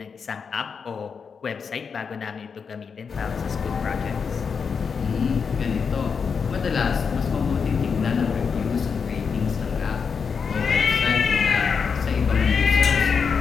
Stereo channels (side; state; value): right; quieter; 5.9 dB